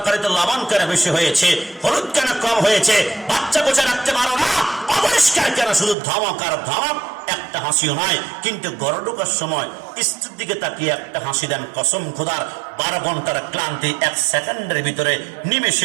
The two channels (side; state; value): left; drops out; at 6.0 s